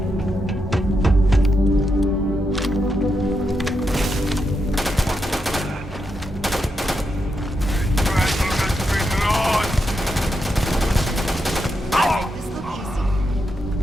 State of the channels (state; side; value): normal; both; correlation 0.84